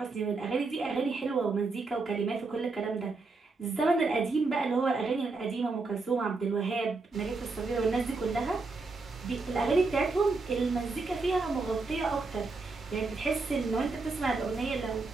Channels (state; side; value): quieter; left; 3.8 dB